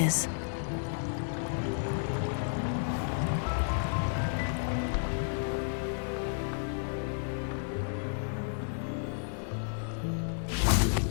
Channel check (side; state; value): right; silent; digital silence